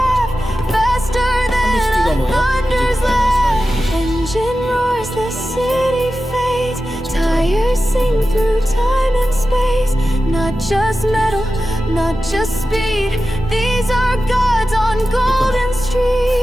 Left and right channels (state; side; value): normal; both; correlation 0.93